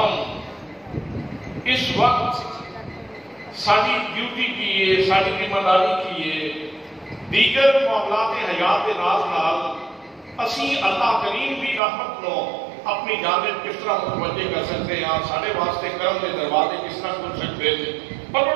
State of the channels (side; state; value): left; drops out; at 11.8 s